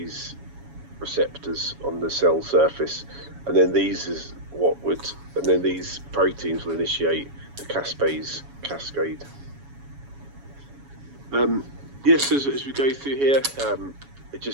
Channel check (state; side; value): late; left; 7.2 ms